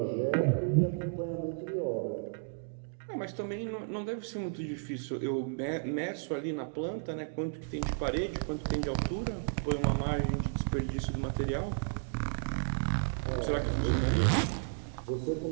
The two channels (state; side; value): silent; left; digital silence